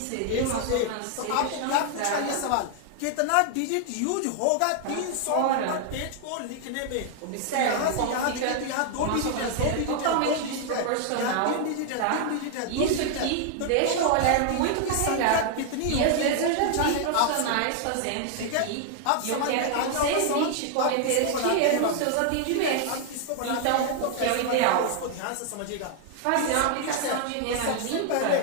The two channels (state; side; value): different; both; correlation 0.00